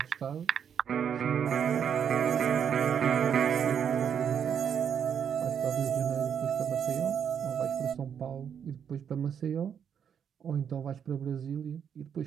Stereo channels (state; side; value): quieter; left; 8.0 dB